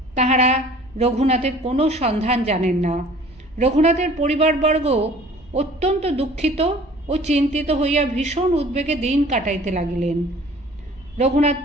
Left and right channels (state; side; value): noise; right; rumble, 28 dB below the sound